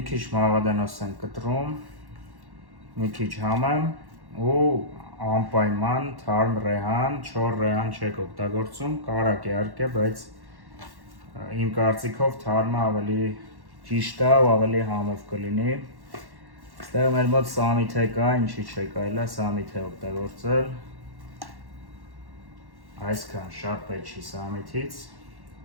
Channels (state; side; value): late; left; 1.1 ms